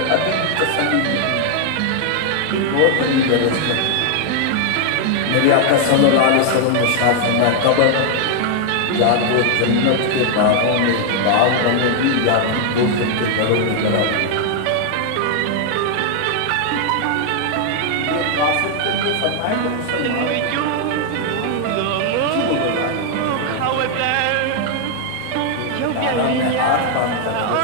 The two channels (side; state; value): both; different; correlation 0.00